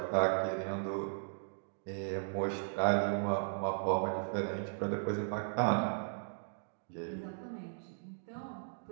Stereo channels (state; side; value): silent; left; digital silence